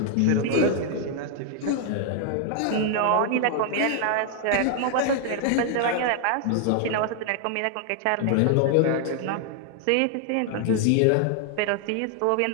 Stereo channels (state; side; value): different; both; correlation 0.00